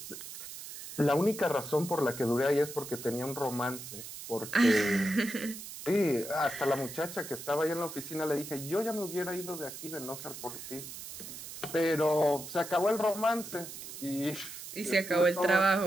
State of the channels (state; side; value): noise; right; hiss, 11 dB below the sound